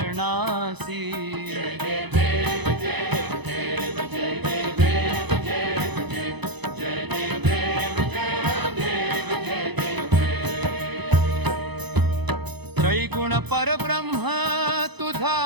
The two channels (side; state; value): left; late; 0.99 ms